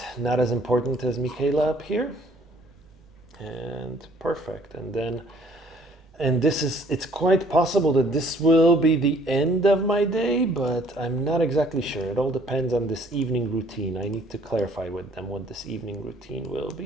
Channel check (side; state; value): right; noise; rumble, 29 dB below the sound